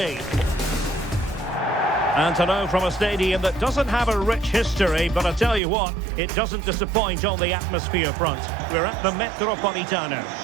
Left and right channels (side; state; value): left; drops out; at 5.6 s